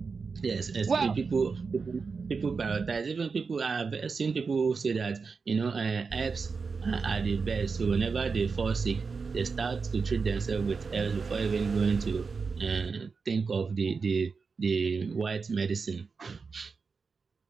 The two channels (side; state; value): left; quieter; 4.9 dB